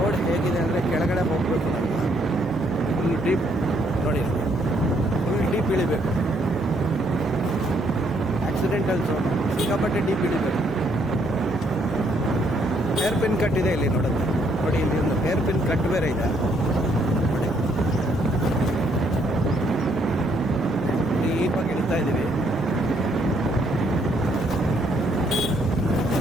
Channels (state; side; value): normal; both; correlation 0.70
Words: ಹೇಗಿದೆ ಅಂದರೆ ಕೆಳಗಡೆ ಹೋಗಬೇಕು, ಫುಲ್ ಡೀಪ್ ನೋಡಿ, ಫುಲ್ ಡೀಪ್ ಇಳಿಬೇಕು. ಆಕ್ಸಿಡೆಂಟಲ್ ಝೋನ್ ಸಿಕ್ಕಾಪಟ್ಟೆ ಡೀಪ್ ಇಳಿಬೇಕು. ಹೇರ್ ಪಿನ್ ಕಟ್ ಇದೆ ಇಲ್ಲಿ ನೋಡುತ್ತೆ ನೋಡಿ. ಇಲ್ಲಿ ಒಂದು ಹೇರ್ ಪಿನ್ ಕಟ್ ಬೇರೆ ಇದೆ ನೋಡಿ. ಡೀಪಾಗಿ ಇಳಿತಾ ಇದ್ದೀವಿ.